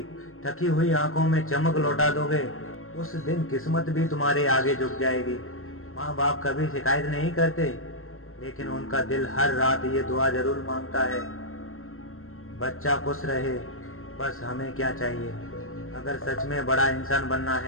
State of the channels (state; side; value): late; right; 0.62 ms